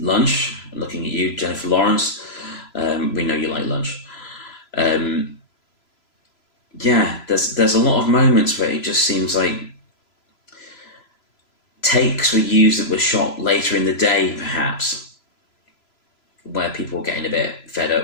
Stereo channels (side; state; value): right; late; 3.0 ms